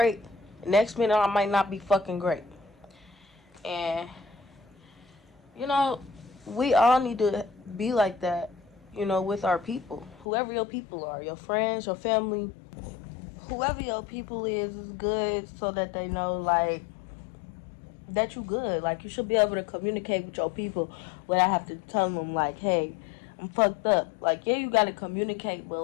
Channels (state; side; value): drops out; right; at 10.2 s